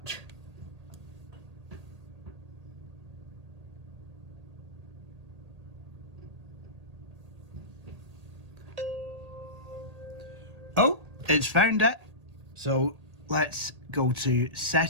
Oh, it's found it. So let's go to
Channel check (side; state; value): left; late; 1.8 ms